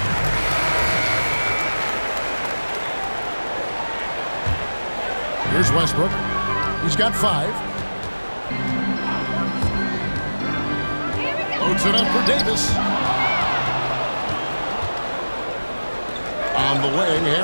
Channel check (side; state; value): both; inverted; correlation -1.00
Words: Here's Westbrook. He's got 5. Loads it up for Davis. On the wing,